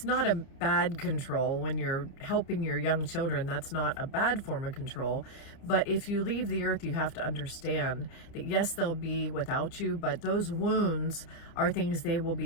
not a bad control when you're helping your young children. That's not a bad form of control. But if you leave the earth, you have to understand that, yes, they'll be without you, but those wounds are things they will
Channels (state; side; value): late; right; 30 ms